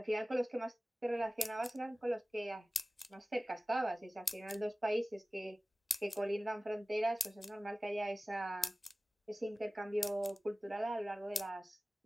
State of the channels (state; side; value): normal; both; correlation 0.97